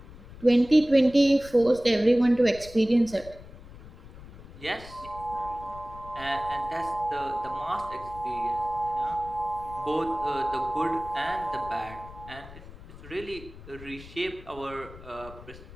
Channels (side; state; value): left; noise; rumble, 17 dB below the sound